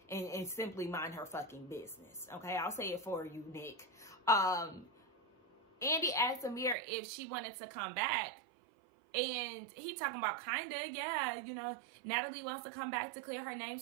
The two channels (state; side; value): drops out; left; at 6.8 s